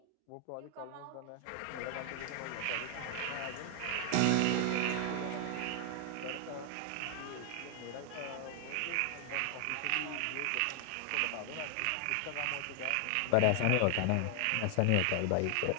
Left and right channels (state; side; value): different; both; correlation 0.00